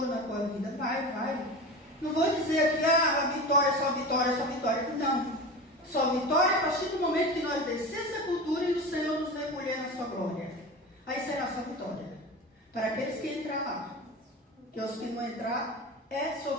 na tua vida, vai. Não vou dizer aqui, a vitória, só vitória, não. Só vitória a partir do momento que nós descer essa cultura e o Senhor nos recolher na sua glória. Aí será só vitória. Para aqueles que entrar lá. Que os que não entrar é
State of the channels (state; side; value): normal; both; correlation 0.29